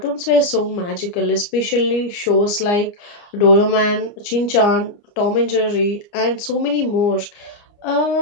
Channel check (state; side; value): late; right; 29 ms